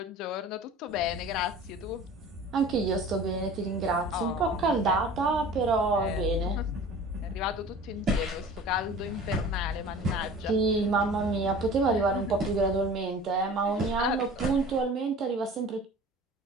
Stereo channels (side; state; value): both; normal; correlation 0.42